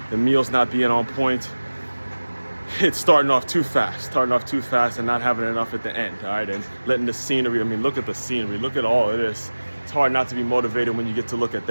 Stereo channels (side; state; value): both; inverted; correlation -1.00